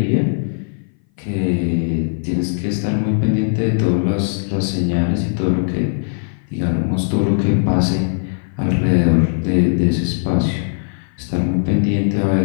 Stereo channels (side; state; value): right; silent; 58 dB below the other